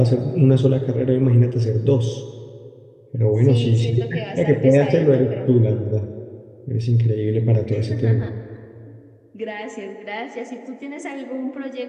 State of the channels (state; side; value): identical; both; correlation 1.00